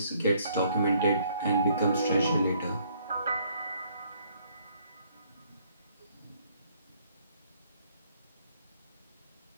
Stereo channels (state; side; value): inverted; both; correlation -0.65